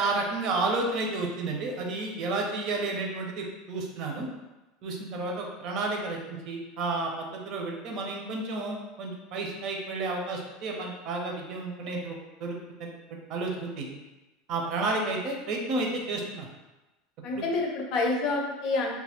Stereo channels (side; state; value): both; normal; correlation 0.30